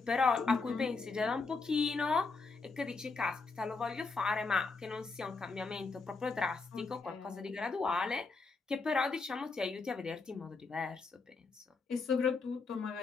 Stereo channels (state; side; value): quieter; right; 4.2 dB